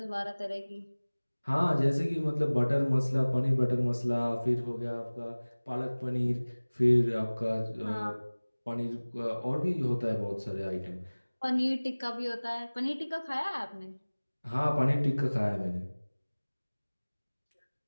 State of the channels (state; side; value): inverted; both; correlation -1.00